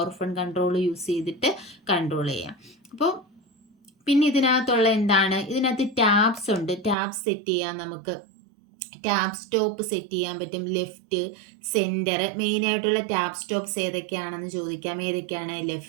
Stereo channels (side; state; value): left; drops out; at 7.0 s